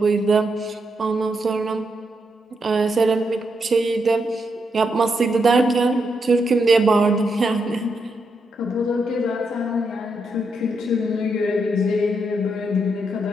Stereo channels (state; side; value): normal; both; correlation 0.81